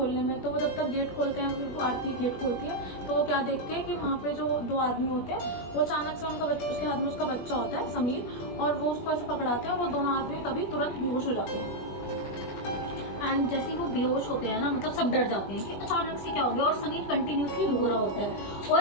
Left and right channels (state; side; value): late; right; 21 ms